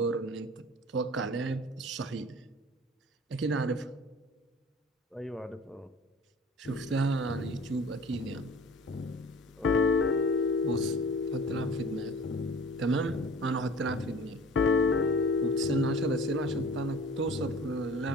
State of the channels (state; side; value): normal; both; correlation 0.42